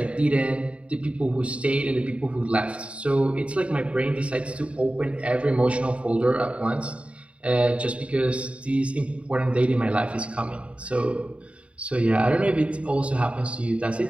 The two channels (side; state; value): left; late; 0.061 ms